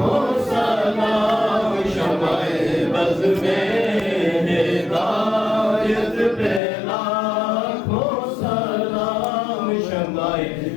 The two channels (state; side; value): drops out; right; at 6.6 s